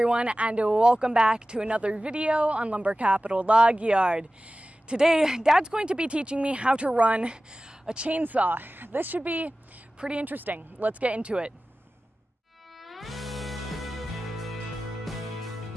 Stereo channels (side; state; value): both; normal; correlation 0.96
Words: and welcome back to another video on Lumber Capital Log Yard. Today, Dad's going to be teaching me how to run a chainsaw. This should be pretty interesting. Let's get into it.